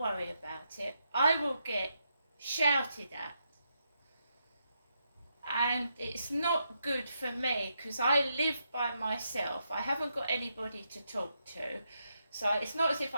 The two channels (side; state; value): both; inverted; correlation -0.82